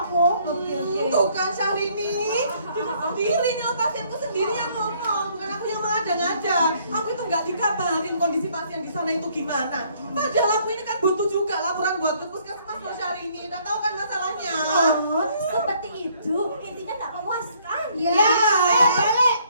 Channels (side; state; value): both; inverted; correlation -0.64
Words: aku. Tuh kan Syahrini, dia sendiri nih pasienku sendiri yang ngomong, bukan aku yang mengada-ngada. Aku itu nggak dikabarin kondisi pasien di sana itu gimana. Padahal aku ini kan butuh juga laporan buat ke puskesmas loh Syahrini. Udah tahu kan masalahnya? Oh, seperti itu. Intinya tak memuaskan. Ya, balik.